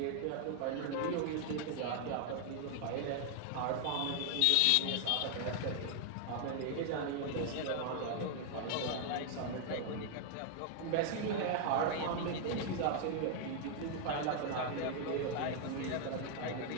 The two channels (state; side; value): different; both; correlation 0.00